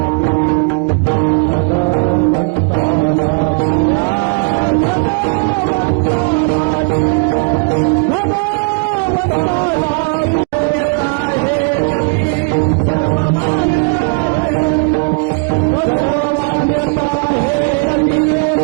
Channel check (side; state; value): left; quieter; 33.5 dB